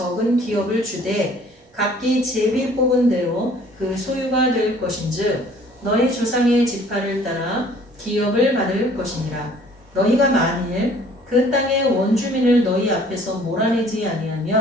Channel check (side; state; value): both; normal; correlation 0.55